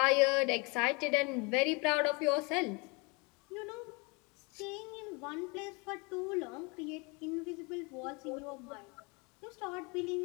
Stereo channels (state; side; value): quieter; right; 29.5 dB